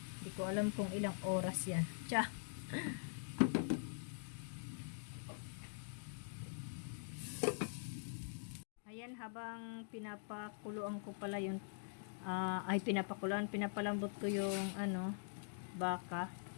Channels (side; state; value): right; silent; digital silence